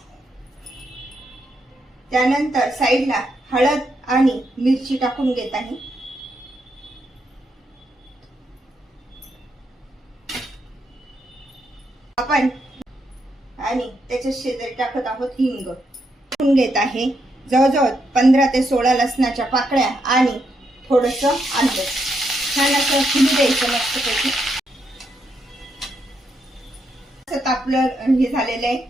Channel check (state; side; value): normal; both; correlation 0.80